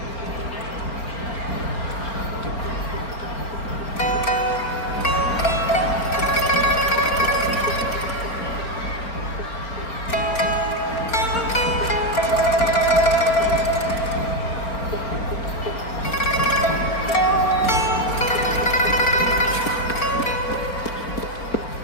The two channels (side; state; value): right; late; 4.4 ms